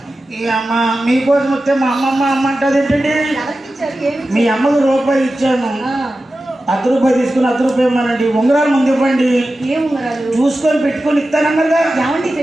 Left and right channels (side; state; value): both; normal; correlation 0.93